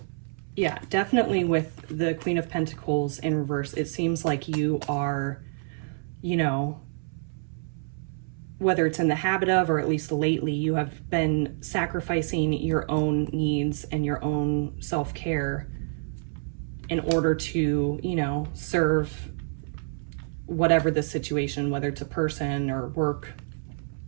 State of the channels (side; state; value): left; silent; 60 dB below the other